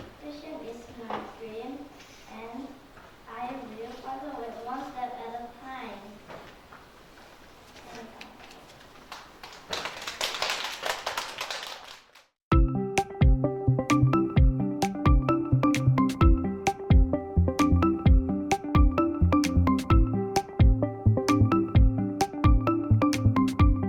fashion is my dream, and I will follow it one step at a time.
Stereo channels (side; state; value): both; identical; correlation 1.00